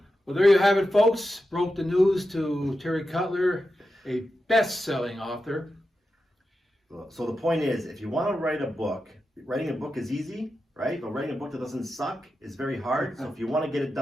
Well, there you have it, folks. Broke the news to Terry Cutler, a best-selling author. So the point is, if you want to write a book, writing a book is easy, right? But writing a book that doesn't suck is very hard. So if you want to get it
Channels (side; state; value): both; normal; correlation 0.90